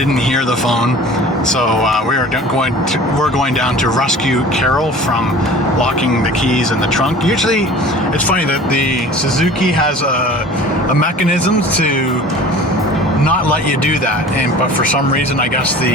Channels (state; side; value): normal; both; correlation 0.42